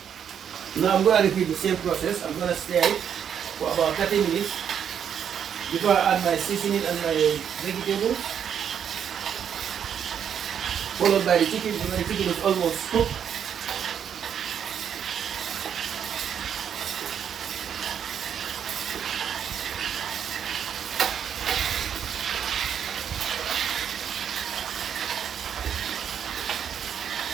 Now I'm gonna repeat the same process. I'm gonna stir it for about 30 minutes before I add my seasoning and my vegetables, followed by the chicken. When the chicken is almost cooked,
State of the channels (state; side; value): quieter; left; 8.4 dB